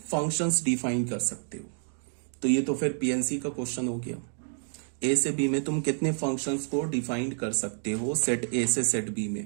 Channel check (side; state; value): left; silent; 59 dB below the other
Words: फंक्शंस डिफाइन कर सकते हो। तो ये तो फिर पीएनसी का क्वेश्चन हो गया। ए से बी में तुम कितने फंक्शंस को डिफाइन कर सकते हो सेट ए से सेट बी में,